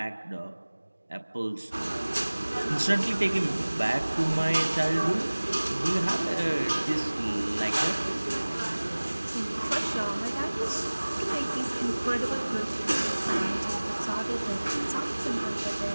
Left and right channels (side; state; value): both; inverted; correlation -1.00